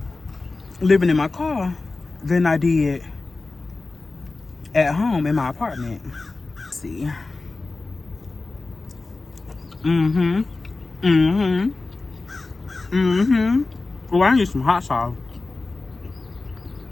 living in my car than I did at home in my apartment. Let's see. Oh, I need some hot sauce.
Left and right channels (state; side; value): quieter; right; 3.5 dB